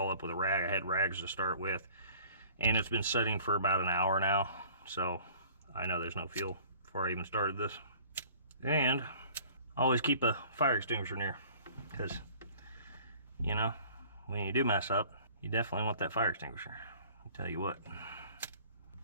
up with a rag. I had rags to start with, and it's been sitting for about an hour now, so I know there's no fuel before I even started this. And always keep a fire extinguisher near, because, you know, when you do mess up, you definitely want that fire extinguisher. I'll tell you what.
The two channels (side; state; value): both; inverted; correlation -0.50